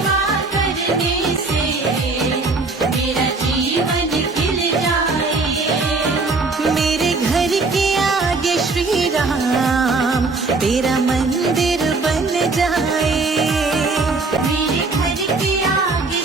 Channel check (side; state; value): left; quieter; 3.7 dB